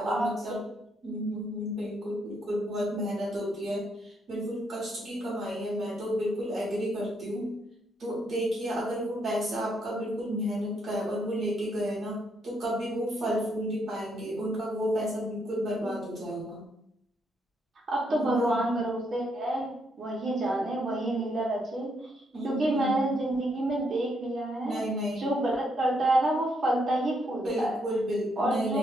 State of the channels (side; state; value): both; normal; correlation 0.75